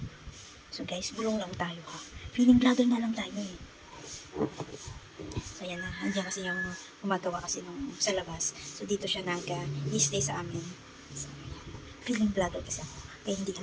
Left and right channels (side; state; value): both; identical; correlation 1.00